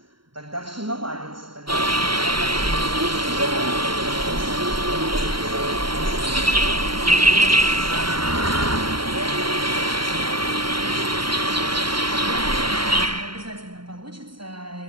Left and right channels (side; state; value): left; late; 0.73 ms